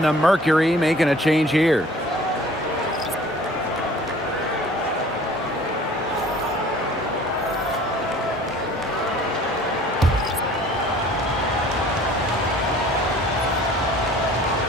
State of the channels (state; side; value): normal; both; correlation 0.50